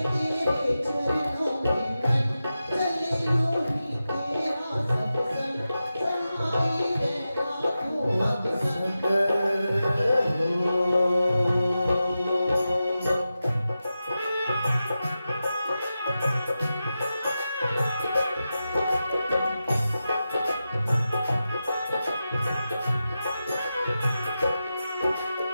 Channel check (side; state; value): both; inverted; correlation -0.92